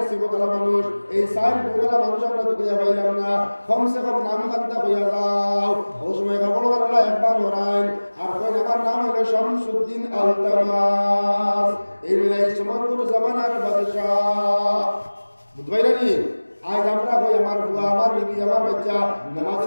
সিবতলা মানুষ এই সাইড গোলা মানুষ আমরা তো কইয়া পাইলাম না, কমসে কম নাম খান্তা কইয়া যাও। ও সময় কাপড় বানালা একবার হরাইন আর কই আমার নাম হলো শামসুদ্দিন আলতামাস, এই মিলাই সমগ্র জামানার বাদশাহ। বুঝবাইরা নি? আজ আমরা কই আমার বুয়া আমার বিবি আমার বাচ্চা নামাজ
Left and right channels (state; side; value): inverted; both; correlation -1.00